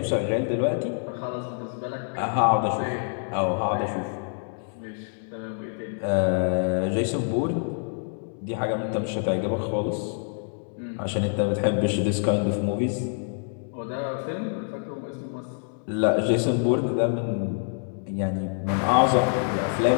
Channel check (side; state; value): right; silent; 60 dB below the other